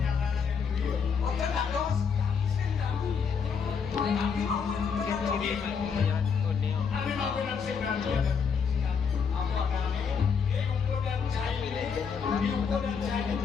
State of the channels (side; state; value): right; quieter; 6.2 dB